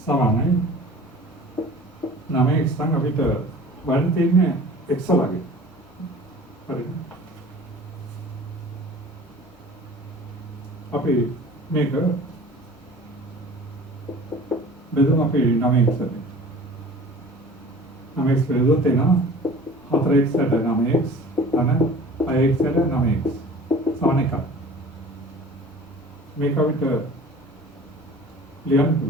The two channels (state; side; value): normal; both; correlation 0.44